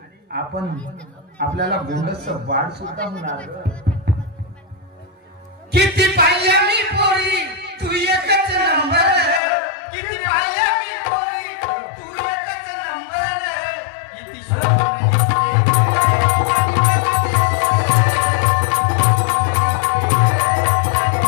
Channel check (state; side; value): drops out; right; at 9.4 s